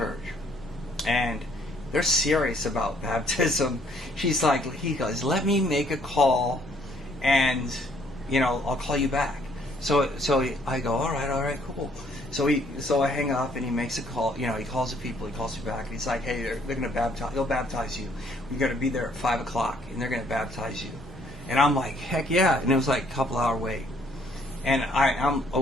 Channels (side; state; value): both; normal; correlation 0.65